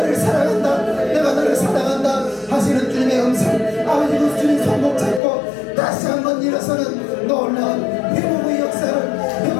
사랑한다 내가 너를 사랑한다 하시는 주님의 음성 아버지 그 주님 손목 잡고 다시 한번 일어서는 놀라운 회복의 역사를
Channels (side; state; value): right; drops out; at 5.2 s